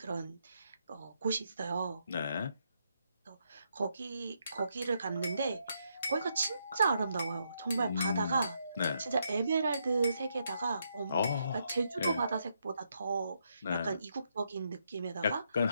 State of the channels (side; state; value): both; inverted; correlation -0.78